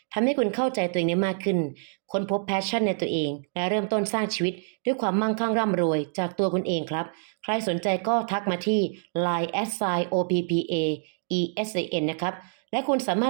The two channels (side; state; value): left; silent; 61 dB below the other